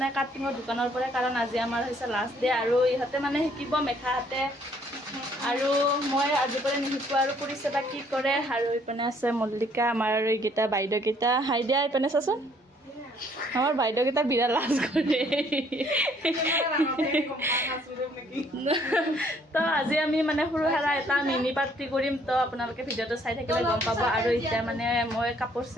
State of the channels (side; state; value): both; normal; correlation 0.63